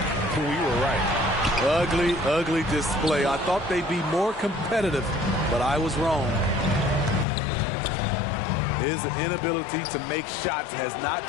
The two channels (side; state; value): right; drops out; at 7.2 s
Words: we were right. Ugly, ugly display. I thought they'd be more competitive, but I was wrong. His inability to make shots has not